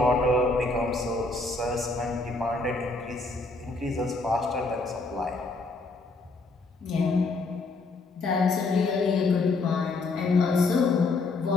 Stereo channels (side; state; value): right; quieter; 3.5 dB